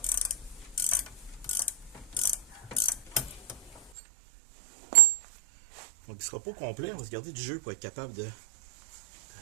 Donc, il ne sera pas complet. On va se garder du jeu pour être capable de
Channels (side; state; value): left; drops out; at 3.9 s